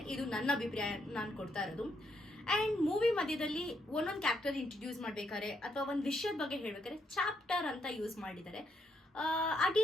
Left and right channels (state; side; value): normal; both; correlation 0.76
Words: ಇದು ನನ್ನ ಅಭಿಪ್ರಾಯ, ನಾನು ಕೊಡ್ತಾ ಇರೋದು. ಅಂಡ್ ಮೂವಿ ಮಧ್ಯದಲ್ಲಿ ಒಂದೊಂದು ಕ್ಯಾರೆಕ್ಟರ್ ಇಂಟ್ರಡ್ಯೂಸ್ ಮಾಡ್ಬೇಕಾದ್ರೆ ಅಥವಾ ಒಂದು ವಿಷಯದ ಬಗ್ಗೆ ಹೇಳ್ಬೇಕಾದ್ರೆ ಚಾಪ್ಟರ್ ಅಂತ ಯೂಸ್ ಮಾಡಿದ್ದಾರೆ. ಆ